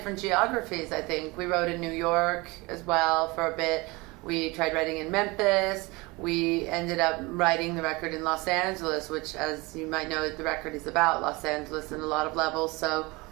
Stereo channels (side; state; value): left; quieter; 24.3 dB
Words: geographies, I think. We wrote in New York as well for a bit. We tried writing in Memphis. We ended up writing the record in Los Angeles, which, as you might know, the record is about Los Angeles in a lot of levels. So